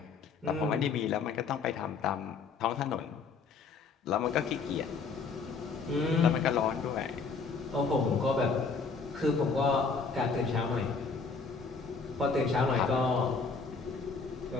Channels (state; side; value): quieter; right; 4.9 dB